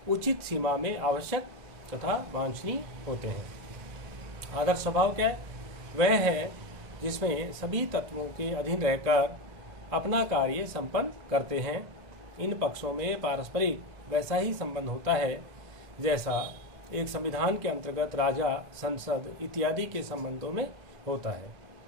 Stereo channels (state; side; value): late; left; 2.1 ms